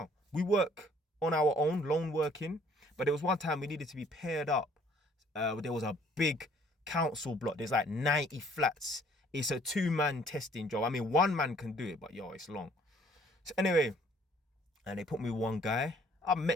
we work on our own, lone working. But there was one time we needed to be paired up. There was a big council block. There's like 90 flats. It's a 2-man testing job. I mean, 1 man can do it, but it's long. So anyway, and they put me with one guy. I've met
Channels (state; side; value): normal; both; correlation 0.59